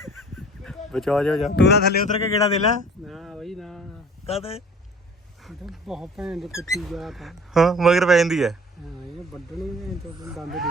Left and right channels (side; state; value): both; normal; correlation 0.47